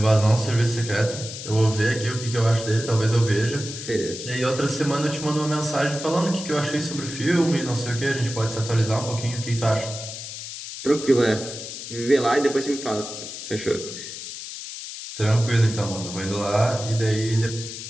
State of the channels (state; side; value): noise; left; hiss, 9 dB below the sound